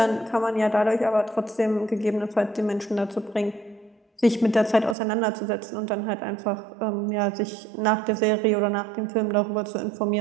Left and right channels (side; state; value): left; drops out; at 5.0 s